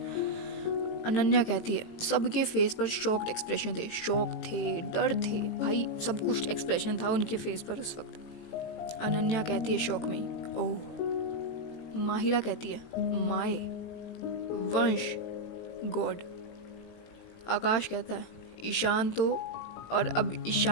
अनन्या कहती है, सबके फेस पर शॉक्ड एक्सप्रेशन थे, शॉक थे, डर थे, भाई सब कुछ एक्सप्रेशन था उनके फेस पर उस वक्त। अनन्या कहती है शॉक में, ओह। माहिरा कहती है, माए, वंश, गॉड। आकाश कहता है, ईशान तो। और अब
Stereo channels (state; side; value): late; right; 18 ms